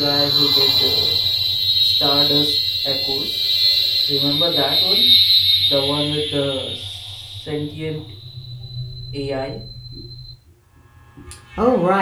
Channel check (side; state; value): both; identical; correlation 1.00